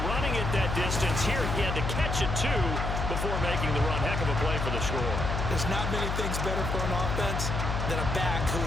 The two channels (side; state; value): left; noise; hum, 1 dB below the sound